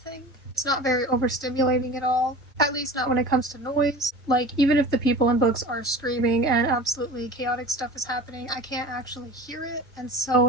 It's not very overstimulating at all, at least not when it comes to noise. Like, even if the people in books are screaming and absolutely chaotic stuff is happening, I can't actually hear it, and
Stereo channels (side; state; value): both; normal; correlation 0.37